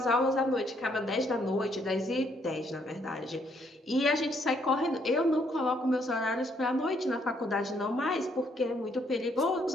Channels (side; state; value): both; normal; correlation 0.70